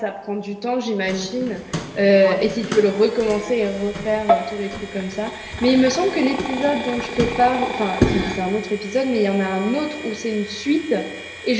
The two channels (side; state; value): both; identical; correlation 1.00